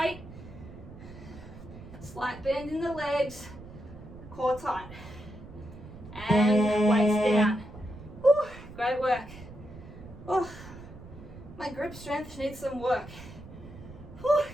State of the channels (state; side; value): noise; right; rumble, 16 dB below the sound